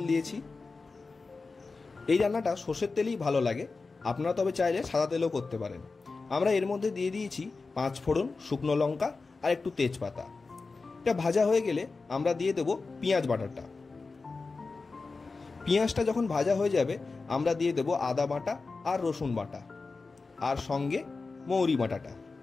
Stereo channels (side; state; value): right; quieter; 4.0 dB